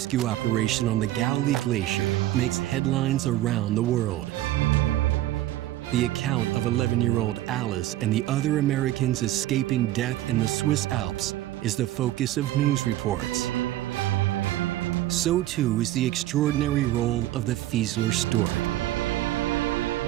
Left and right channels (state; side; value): quieter; left; 14.7 dB